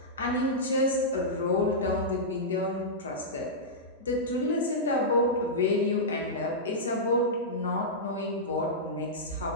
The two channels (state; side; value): normal; both; correlation -0.12